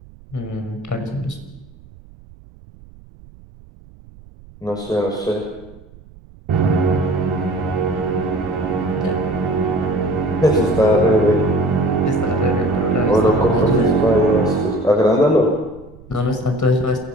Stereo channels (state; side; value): noise; right; rumble, 23 dB below the sound